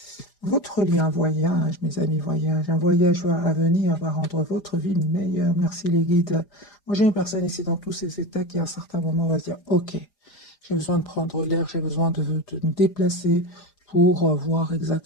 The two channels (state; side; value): late; right; 4.9 ms